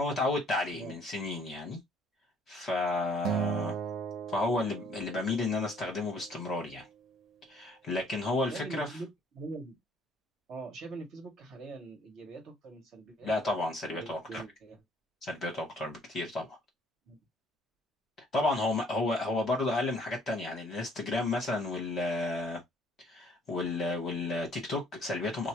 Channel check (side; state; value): both; normal; correlation 0.60